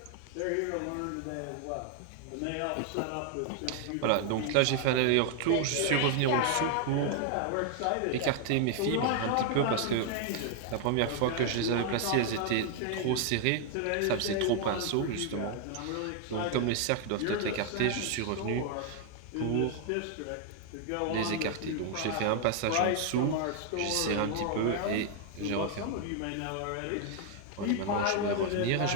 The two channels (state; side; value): different; both; correlation 0.00